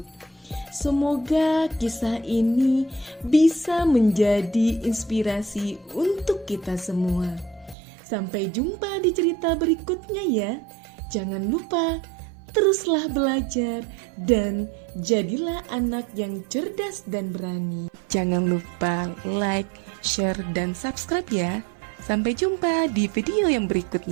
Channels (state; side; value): drops out; left; at 7.8 s